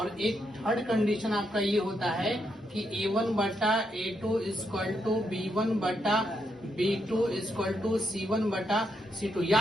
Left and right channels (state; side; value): normal; both; correlation 0.80